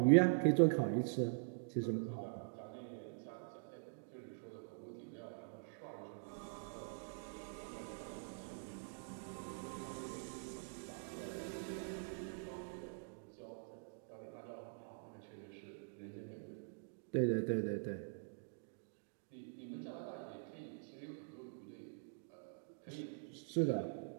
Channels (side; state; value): left; silent; digital silence